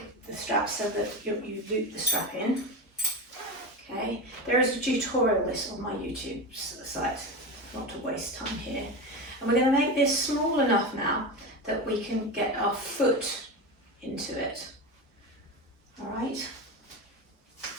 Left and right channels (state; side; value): normal; both; correlation 0.22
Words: the strap so that you loop the strap in. Okay, there is a tutorial this on my YouTube site, not to waste time here. And we're going to make this small enough now that we can get our foot into it. All right,